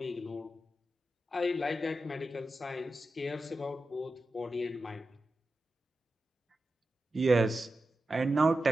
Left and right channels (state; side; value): normal; both; correlation 0.91